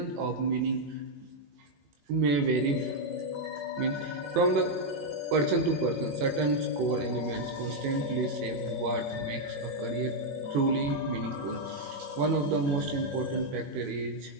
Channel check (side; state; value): left; late; 21 ms